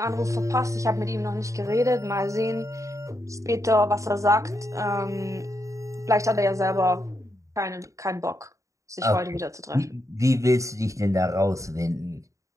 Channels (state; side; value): late; left; 0.15 ms